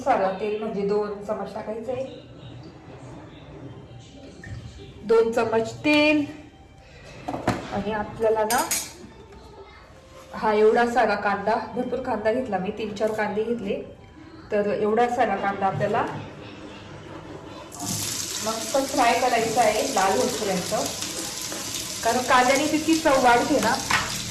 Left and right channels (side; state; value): both; identical; correlation 1.00